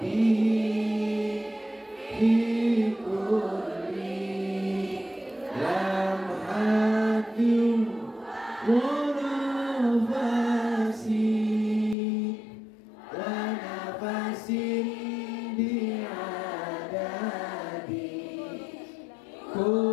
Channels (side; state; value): right; drops out; at 12.0 s